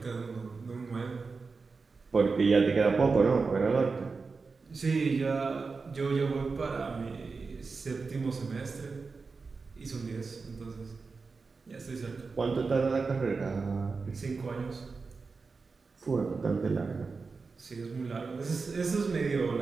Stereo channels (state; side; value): quieter; left; 4.5 dB